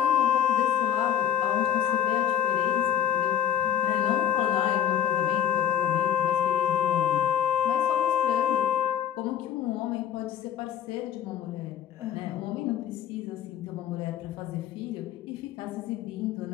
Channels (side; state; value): right; quieter; 9.9 dB